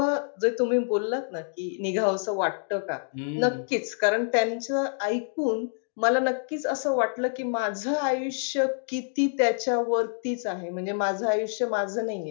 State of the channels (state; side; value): silent; right; digital silence